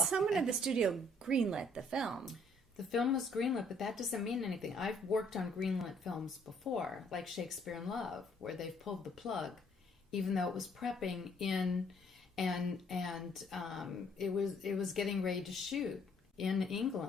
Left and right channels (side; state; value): both; normal; correlation 0.64